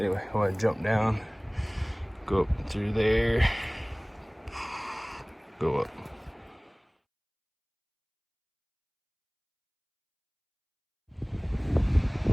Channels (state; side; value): identical; both; correlation 1.00